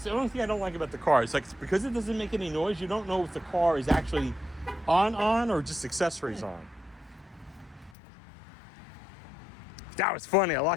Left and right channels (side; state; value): right; drops out; at 8.0 s